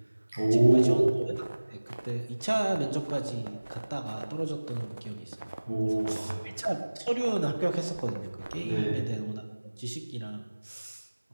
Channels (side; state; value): both; inverted; correlation -1.00